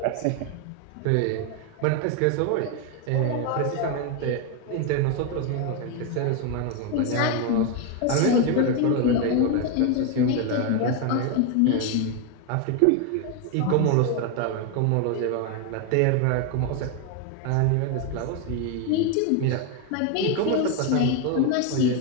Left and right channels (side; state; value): both; different; correlation 0.01